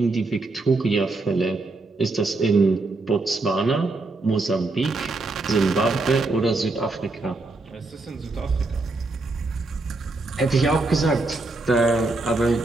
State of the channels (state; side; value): quieter; left; 3.3 dB